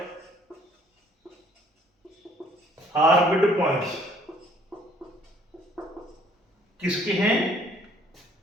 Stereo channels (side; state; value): both; normal; correlation 0.60